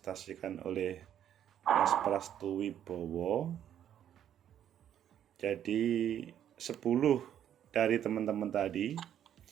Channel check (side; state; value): left; quieter; 10.2 dB